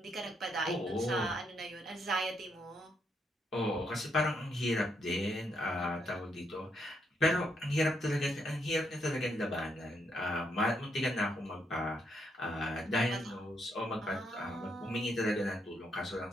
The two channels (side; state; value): both; normal; correlation 0.77